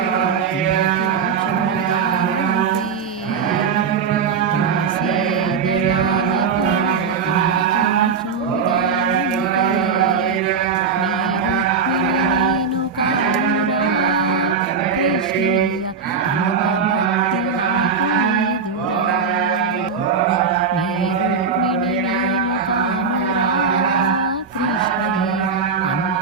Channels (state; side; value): quieter; left; 5.7 dB